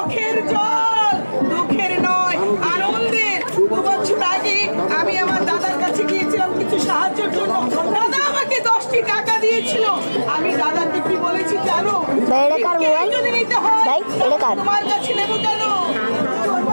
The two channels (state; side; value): inverted; both; correlation -1.00